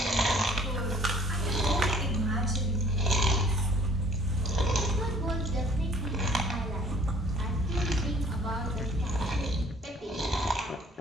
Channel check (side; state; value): both; normal; correlation 0.56